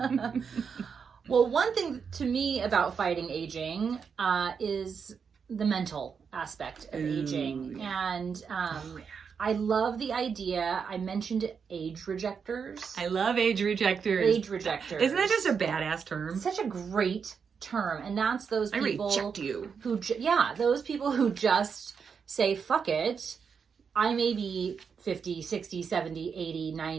Well, one thing to me about fighting aging is the mental aspect of aging. Yeah. And I love the idea. I mentioned age rejectors. I love age rejectors. Age rejectors. Isn't that just a badass term? Such a great term. And that's those people I reject you. Those people who just say, fuck it. I may be 50, 60, 70, 80,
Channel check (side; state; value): left; quieter; 6.3 dB